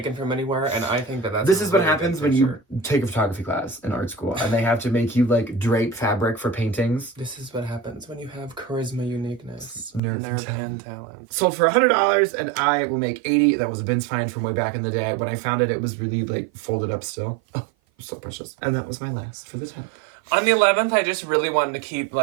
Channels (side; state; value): left; drops out; at 10.0 s